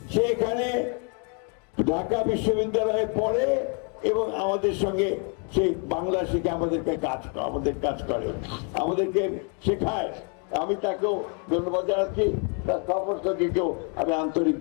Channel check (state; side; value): quieter; right; 38.9 dB